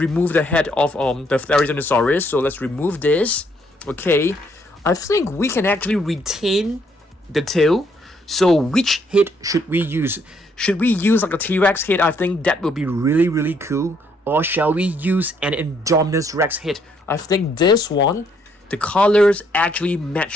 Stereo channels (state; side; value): normal; both; correlation 0.70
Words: the head of the Therizinosaurus? So let's remove this, okay? I think we can actually retain the tail. So which head should we use? Should we use like a T-Rex head? I think that would be really cool. Or shall we use an Indominus Rex head? I think this one, the colors actually